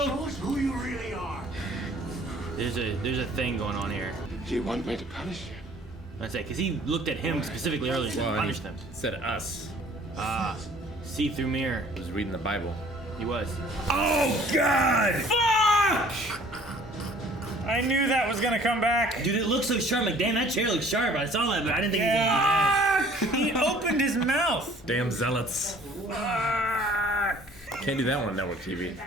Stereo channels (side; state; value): both; normal; correlation 0.54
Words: Show us who you really are. There's a thing going on here. Do you want me to punish you? I say, because he looked at him specifically earlier and Well, punished him. Said us. See-through mirror. He was reading the Bible. He was. Oh God! Fuck! I knew that was gonna come back. Dude, it looks so sharp. Like, damn, that chair looks sharp. I saw that, but I didn't think he was gonna Fuck! He opened his mouth. Damn zealots. Fuck! Can't do that one on network TV.